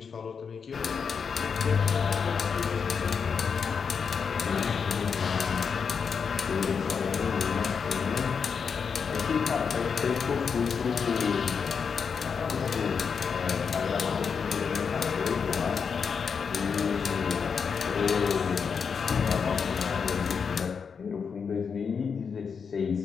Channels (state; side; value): quieter; right; 6.1 dB